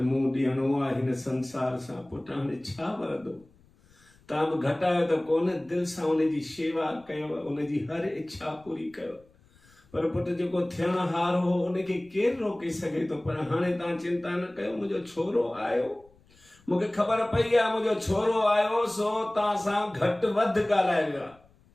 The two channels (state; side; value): noise; left; rumble, 30 dB below the sound